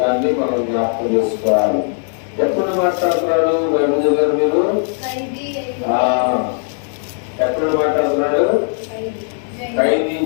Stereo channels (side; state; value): right; silent; 64 dB below the other